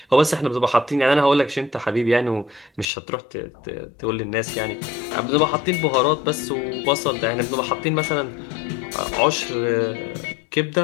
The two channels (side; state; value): right; drops out; at 2.9 s